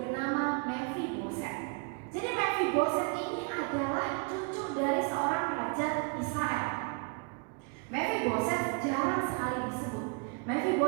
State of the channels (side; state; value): left; quieter; 36.4 dB